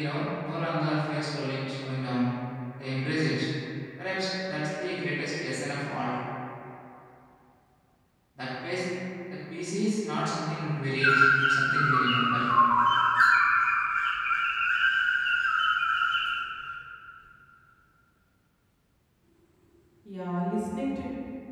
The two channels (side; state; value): both; identical; correlation 1.00